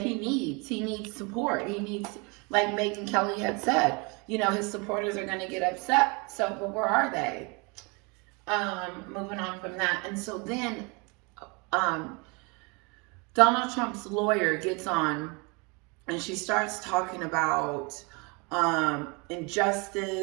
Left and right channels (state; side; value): quieter; left; 30.2 dB